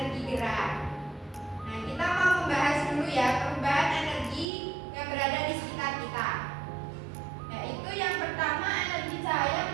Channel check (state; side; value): drops out; left; at 4.5 s